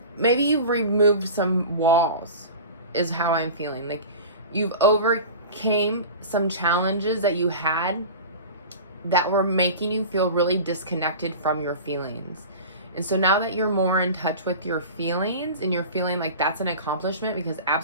maybe you've removed some walls is how I'm feeling. Like you've overcame some challenges that you had that were making you feel really disconnected from your feelings. And so now that you're more in touch with your feelings and you're feeling like that's an accomplishment, because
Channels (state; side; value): inverted; both; correlation -0.34